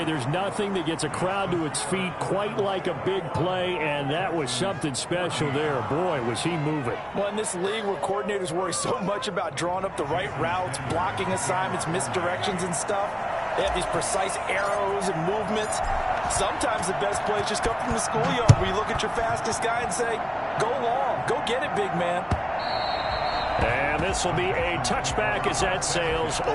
there's nothing that gets a crowd to its feet quite like a big play, and that was something special there. Boy, was he moving. Well, in this league where coordinators worry so much about drawing up the right routes, blocking assignments, misdirections and stuff, they have these precise arrows and movements. Sometimes the best plays just come from the schoolyard where you look at your fastest guy and say, Go long. Go get it, big man. And this will be a touchback as that sails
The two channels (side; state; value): both; identical; correlation 1.00